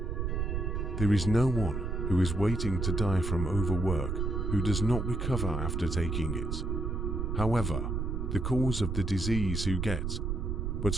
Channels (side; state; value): right; noise; rumble, 1 dB below the sound